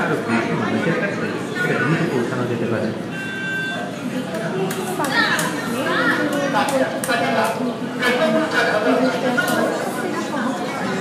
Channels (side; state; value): both; identical; correlation 1.00